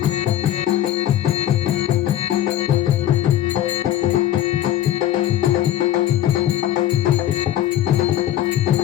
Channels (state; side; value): quieter; right; 12.3 dB